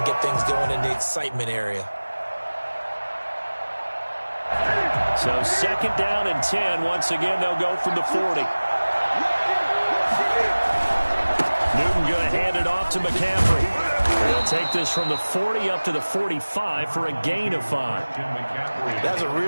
get things going in the excitement area. So 2nd down and 10. Once again, they'll go from the 40. Newton going to hand it off to McCaffrey. They'll take this from the 40 up to the 45 for a gain of 5. That's a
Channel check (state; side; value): inverted; both; correlation -1.00